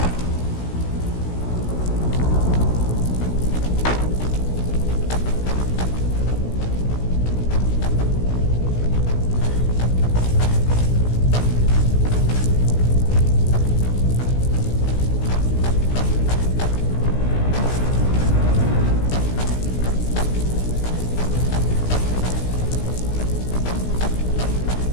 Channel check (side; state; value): right; late; 16 ms